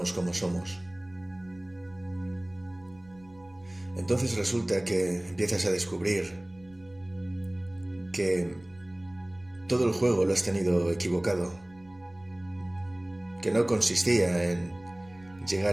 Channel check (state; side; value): noise; right; rumble, 26 dB below the sound